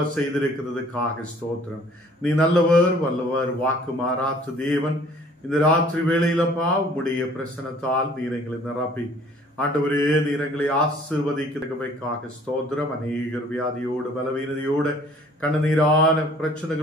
செய்திருக்கிறதுக்காக ஸ்தோத்திரம். நீ நல்லவர், வல்லவர், வாக்கு மாறாத்த தேவன். இந்த ராத்திரி வேளையிலப்பா உம்முடைய பிரசனத்தால் நீர் எங்களை நிரப்பி ஆண்டவரே நீர் எங்களை ஆசீர்வதிக்கிறதுக்காக ஸ்தோத்திரம். அநேகர் வியாதியோடு பலவீனதையோடு கண்ணீரான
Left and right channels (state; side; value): normal; both; correlation 0.55